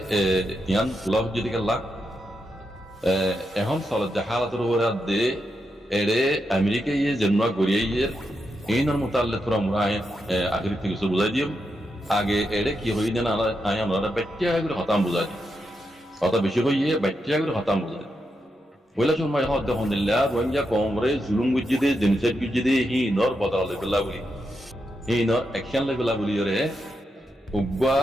ইয়ান লভ যদি গেলা এখন চলত হালাতের উপরে দে এরে আমেরিকা ইয়ে জন্ম গড়িয়ে ইয়ে এইনার মোতাল্লে তোরা মোরা আগের থেকে কিছু বুঝাই দিও আগে এরে কি হই না আয় আমরা বাচ্চা করে হতাম বুঝাই দিই কথা বেশি হইয়ে বাচ্চা করে হতাম বুঝাই ওইলা সময় হদ দেখুন দিল্লা রোহিঙ্গা কংগ্রেস জুলুম গুজি দে জেনিসাইড গুজি দে হি নর বদলা লেবেলা বলি হি নর অ্যাকশন লেবেলা বলি রে উগা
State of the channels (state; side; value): normal; both; correlation 0.85